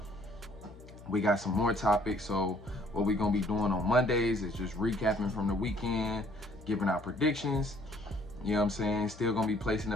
We got some more topics. So what we gonna be doing on Mondays is just recapping from the weekend, giving our predictions. You know what I'm saying? Still gonna be placing the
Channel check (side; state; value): left; noise; hum, 18 dB below the sound